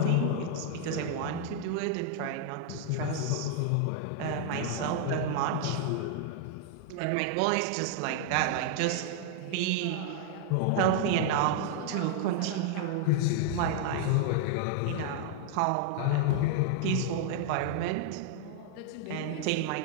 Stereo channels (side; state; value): both; different; correlation 0.00